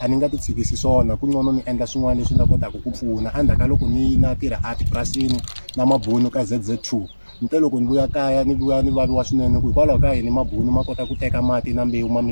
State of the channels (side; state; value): both; inverted; correlation -1.00